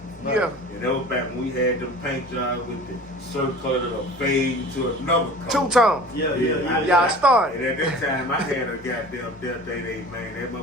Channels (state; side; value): normal; both; correlation 0.41